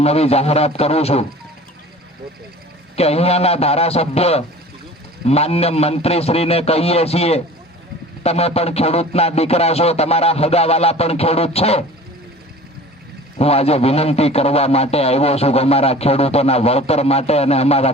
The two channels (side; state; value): both; normal; correlation 0.43